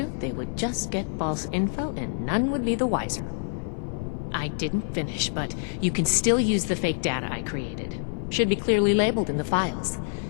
they would just get false info and none would be the wiser. I didn't finish, but you can still use the fake data I created. Should be clearly labeled in the files.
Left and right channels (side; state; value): right; silent; 57 dB below the other